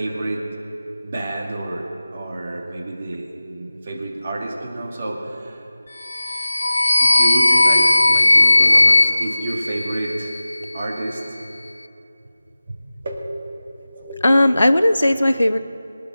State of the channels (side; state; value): both; inverted; correlation -0.96